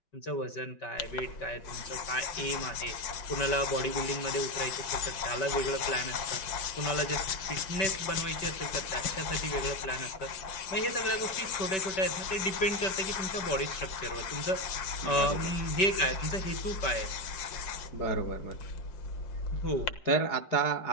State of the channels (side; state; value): right; late; 5.6 ms